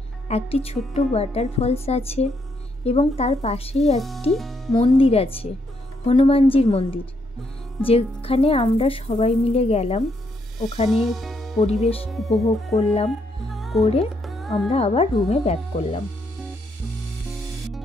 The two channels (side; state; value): both; normal; correlation 0.76